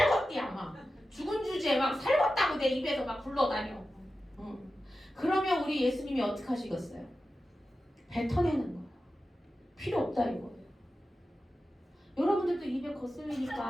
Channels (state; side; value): normal; both; correlation 0.93